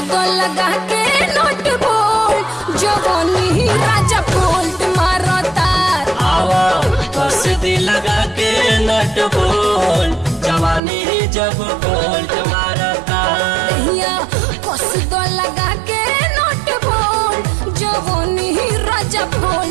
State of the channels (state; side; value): drops out; left; at 10.8 s